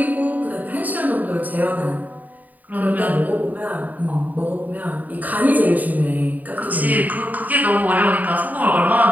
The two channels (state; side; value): late; left; 0.079 ms